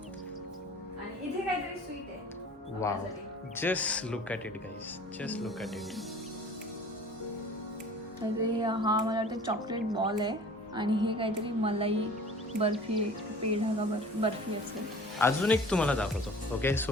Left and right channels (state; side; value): normal; both; correlation 0.45